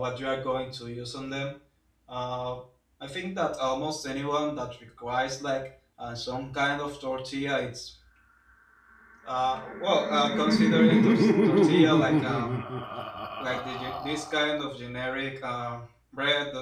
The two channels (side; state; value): both; identical; correlation 1.00